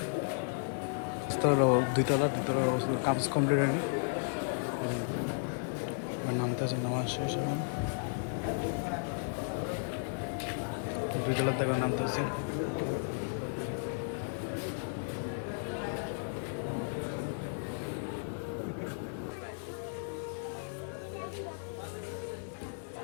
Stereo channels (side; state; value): right; silent; 55 dB below the other